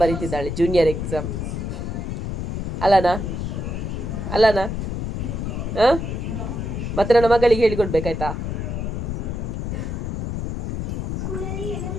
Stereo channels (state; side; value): noise; left; rumble, 3 dB below the sound